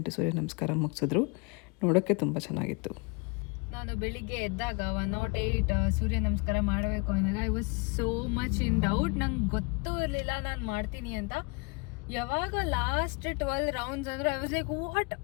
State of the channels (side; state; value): right; quieter; 30.7 dB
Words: ಸೂರ್ಯ ನಮಸ್ಕಾರ ಮುಗಿಸಿದ್ರು. ನೋಡೋಕ್ಕೆ ತುಂಬ ಚೆನ್ನಾಗಿತ್ತು. ನಾನು ಬೆಳಿಗ್ಗೆ ಎದ್ದಾಗ 108 ಸೂರ್ಯ ನಮಸ್ಕಾರ ಮಾಡಬೇಕು ಅಂದಾಗ I was so much in doubt. ನಂಗೆ ಗೊತ್ತೂ ಇರಲಿಲ್ಲ ನಾನು ಮಾಡ್ತೀನಿ ಅಂತ. ಯಾವಾಗ ಲಾಸ್ಟ್ 12 ರೌಂಡ್ಸ್ ಅಂದ್ರೆ ಐ ವಾಸ್ ಲೈಕ್ ವಾಟ್,